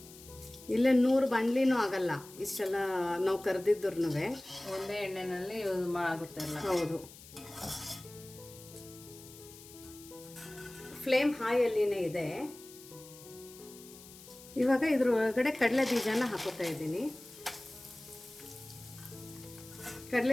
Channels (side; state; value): left; noise; hiss, 18 dB below the sound